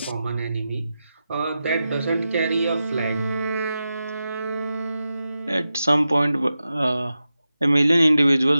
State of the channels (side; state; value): both; inverted; correlation -0.91